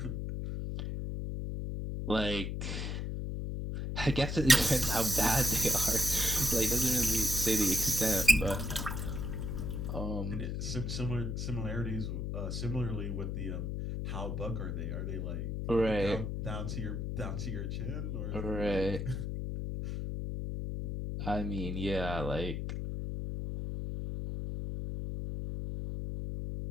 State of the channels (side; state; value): left; noise; hum, 3 dB below the sound